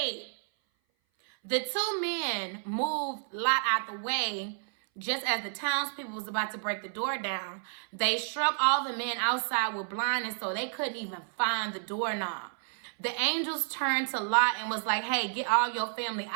The 2 men moved Lot out the way just as the townspeople was about to break the door down. They struck all the men outside with blindness so they couldn't even find the doorknob. The angels turned to Lot and was like, hey, get all your family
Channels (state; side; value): silent; left; 56 dB below the other